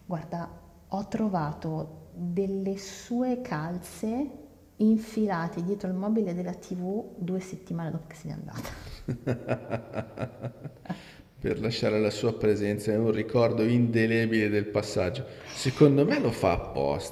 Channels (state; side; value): identical; both; correlation 1.00